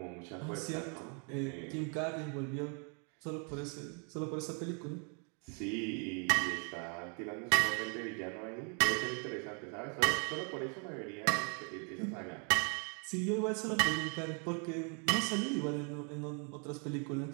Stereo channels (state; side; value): quieter; left; 38.2 dB